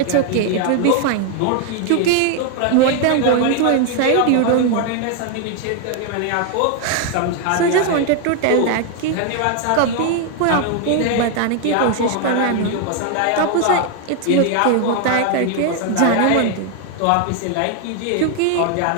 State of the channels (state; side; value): different; both; correlation 0.00